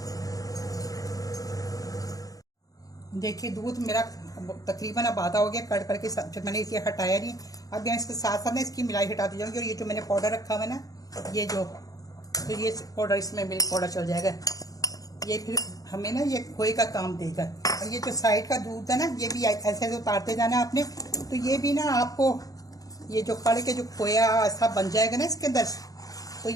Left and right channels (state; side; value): late; right; 0.17 ms